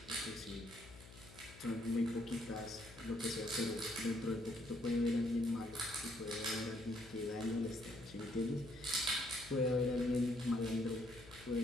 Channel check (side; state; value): left; noise; hum, 18 dB below the sound